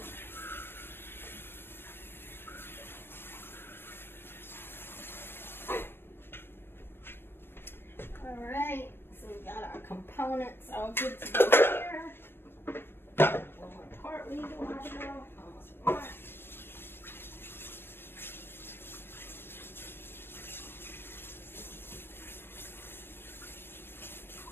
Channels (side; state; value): right; late; 0.10 ms